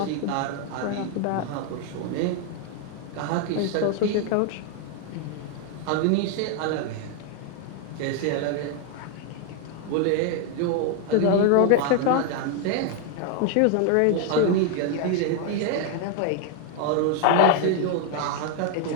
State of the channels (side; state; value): both; different; correlation 0.00